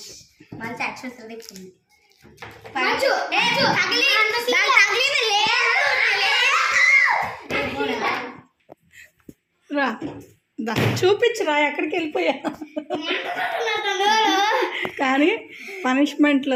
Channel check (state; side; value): identical; both; correlation 1.00